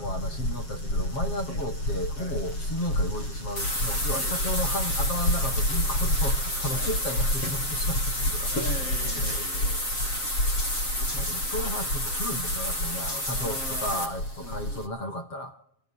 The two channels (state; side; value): late; right; 7.4 ms